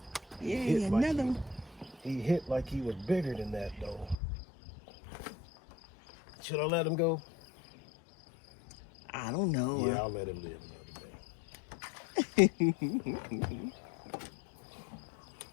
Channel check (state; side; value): drops out; right; at 4.2 s